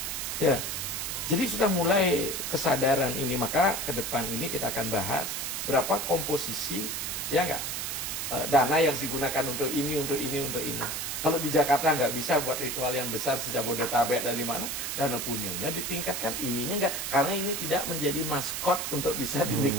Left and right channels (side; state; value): right; noise; hiss, 3 dB below the sound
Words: Ya. Jadi sudah mulai kesadaran ini, maka ke depan ini kita akan bahas berapa komposisi ya enggak dana yang digunakan untuk ini, untuk ini, untuk ini. Kalau di Jakarta nggak bisa buat ritual yang besar sejak Jabodetabek dan di mana, dana punyanya ditingkatkan, ininya nggak, karena ini tidak menjadi maskot untuk bisa